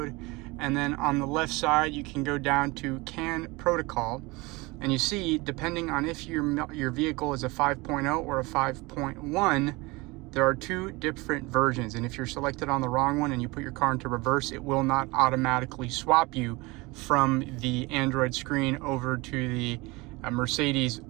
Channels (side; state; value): left; quieter; 23.9 dB